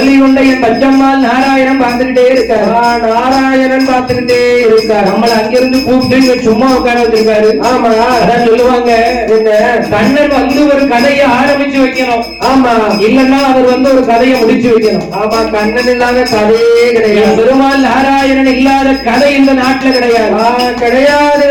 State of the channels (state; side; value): identical; both; correlation 1.00